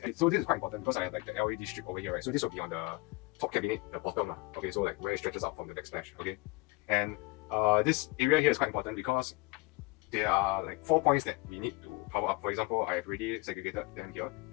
So this is quite important because I have like the LED strip over here, right? So this will be on the top cabinet, the bottom. Okay, so like where it stretches out from the backsplash. Okay, and this area here is quite important because there are like 4 points that we need to power up. For example, I have already segregated them here.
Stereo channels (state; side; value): quieter; right; 24.7 dB